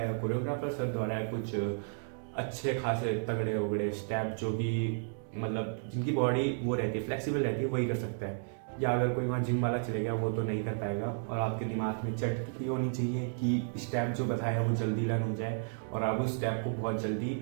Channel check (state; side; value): silent; left; digital silence